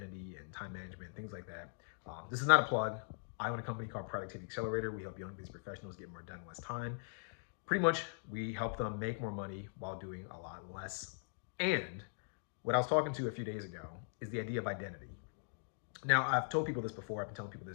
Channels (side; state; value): right; silent; digital silence